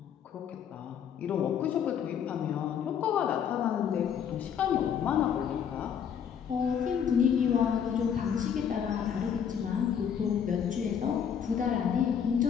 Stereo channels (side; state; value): right; quieter; 8.1 dB